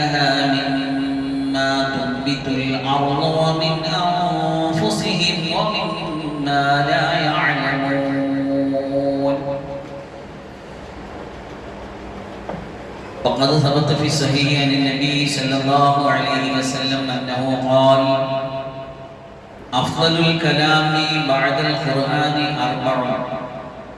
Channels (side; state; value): both; identical; correlation 1.00